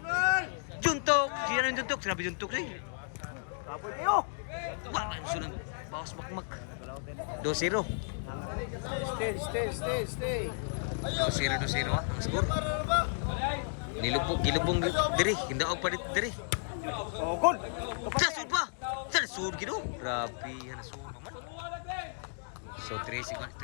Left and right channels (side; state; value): right; silent; digital silence